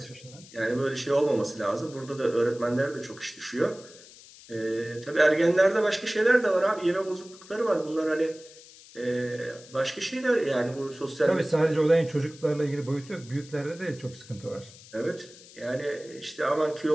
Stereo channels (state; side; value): noise; left; hiss, 20 dB below the sound